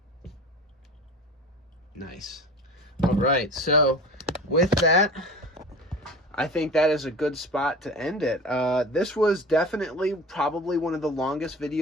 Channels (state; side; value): normal; both; correlation 0.36